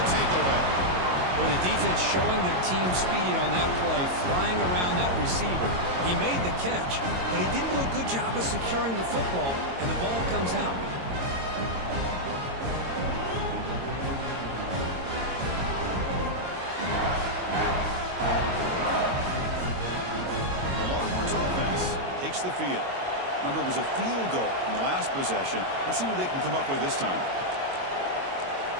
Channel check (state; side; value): late; left; 22 ms